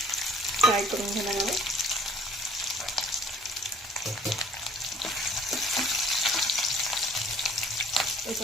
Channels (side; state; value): both; normal; correlation 0.55